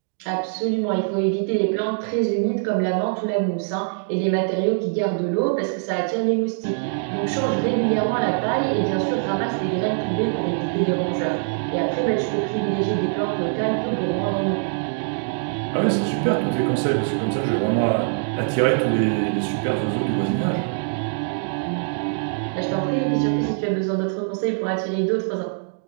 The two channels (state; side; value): silent; left; digital silence